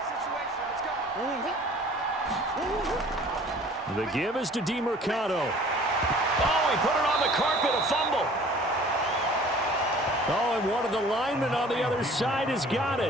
The give is to DeMercado. Oh, he put it on the carpet, a fumble. Oh, and one of the linemen on the other side has got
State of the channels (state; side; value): normal; both; correlation 0.50